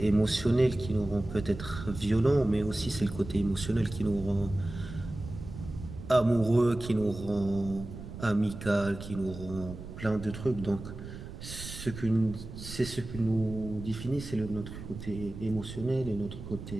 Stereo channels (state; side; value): noise; right; rumble, 11 dB below the sound